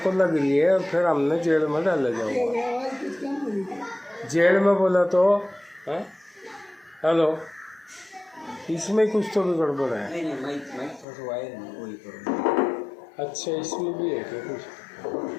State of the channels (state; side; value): drops out; right; at 11.1 s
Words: लग रही है, और फिर हमने जेल में डाला जाओगे। आवाज़ कुछ कम हो रही है। जेल में बोला तो है? हेलो, इसमें कुछ तो भी गड़बड़ है। नहीं माइक थोड़ा वायर है, वही करो। अच्छा, इसमें भी है क्या कुछ?